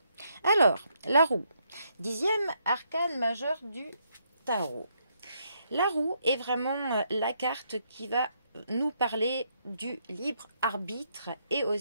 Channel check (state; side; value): inverted; both; correlation -0.75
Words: Alors, la roue, 10e arcane majeur du tarot. La roue est vraiment la carte qui va nous parler du libre arbitre et